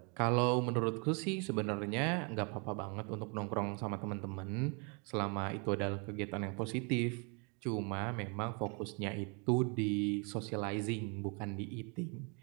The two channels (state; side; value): quieter; left; 34.0 dB